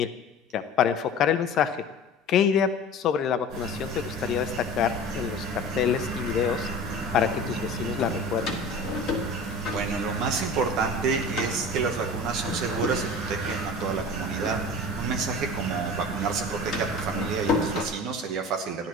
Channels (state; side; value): normal; both; correlation 0.37